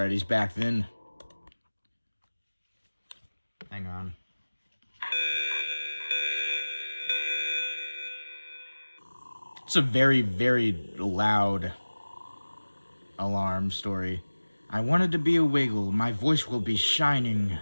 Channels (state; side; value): inverted; both; correlation -1.00